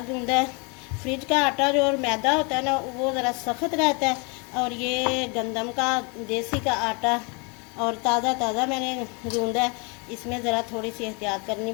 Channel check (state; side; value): quieter; right; 32.4 dB